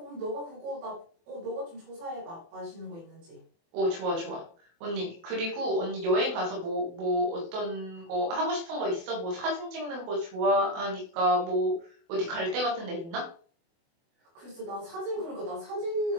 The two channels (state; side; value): late; left; 24 ms